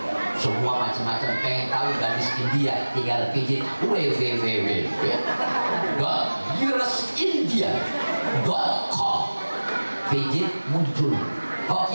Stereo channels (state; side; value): inverted; both; correlation -1.00